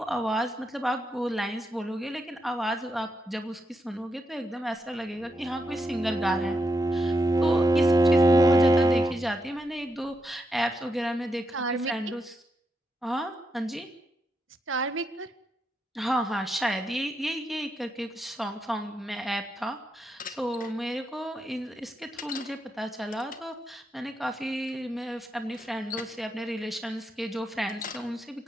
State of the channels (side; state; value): both; normal; correlation 0.83